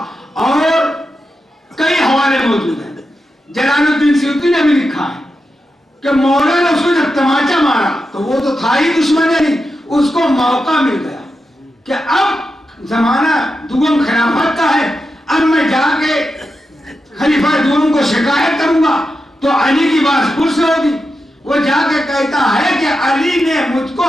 اور کئی حوالے موجود ہیں۔ جلال الدین سیوطی نے بھی لکھا ہے کہ مولا نے اس کو جب تماچا مارا تو وہ تو تھا ہی دشمن نہیں، اس کو موقع مل گیا کہ اب زمانہ دوم خلافت کا ہے، اب میں جا کے خلیفہ دوم کو شکایت کروں گا تو علی کی بات پھر سے ہوگی۔ وہ جا کے کہتا ہے کہ علی نے مجھ کو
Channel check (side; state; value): both; normal; correlation 0.88